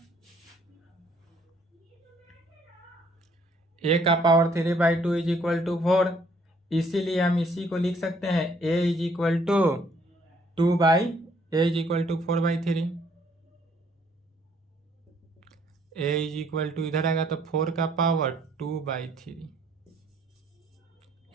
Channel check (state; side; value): normal; both; correlation 0.64